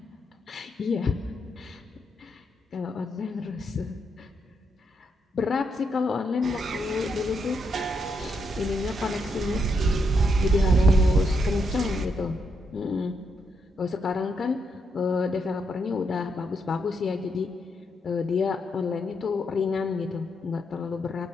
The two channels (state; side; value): normal; both; correlation 0.79